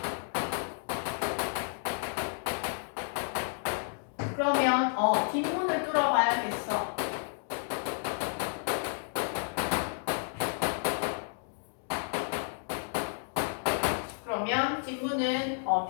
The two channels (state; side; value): silent; right; digital silence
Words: 그러면 뒷문을 뚫어봐야겠어. 그러면 뒷문은